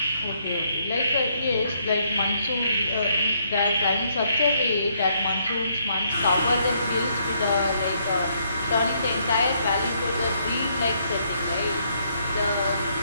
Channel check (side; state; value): both; inverted; correlation -0.72